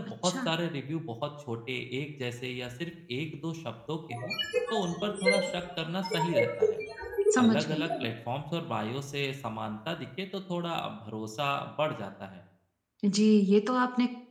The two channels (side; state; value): both; identical; correlation 1.00